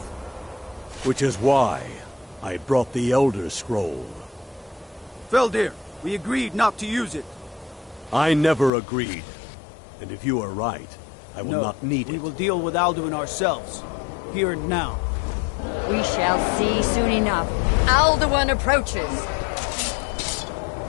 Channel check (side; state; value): right; drops out; at 8.7 s